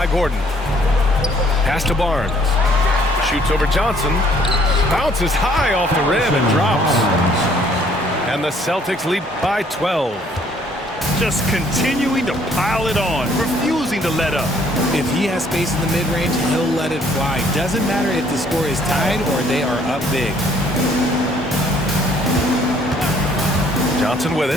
Gordon. Pass to Barnes. Shoots over Johnson. Bounces high off the rim and drops. And the Celtics lead by 12. Just continuing to pile it on, refusing to let up. If he has space in the mid-range, he'll let it fly. Doesn't matter if the score is tied or they are up big. Johnson with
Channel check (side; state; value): both; normal; correlation 0.62